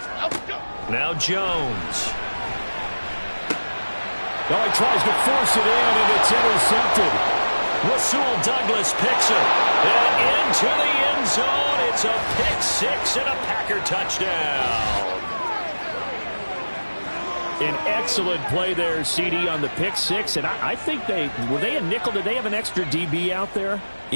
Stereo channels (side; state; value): both; inverted; correlation -1.00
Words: Now Jones. Oh, he tries to force it in, and it's intercepted. Rasul Douglas picks it. And into the end zone. It's a pick six and a Packer touchdown. An excellent play there, CD, on the pick six. And I think were they a nickel? Did they have an extra DB out there?